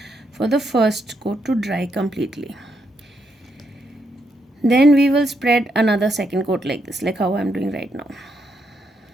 for the first coat to dry completely. Then we will spread another second coat like this, like how I'm doing right now.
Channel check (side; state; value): both; normal; correlation 0.79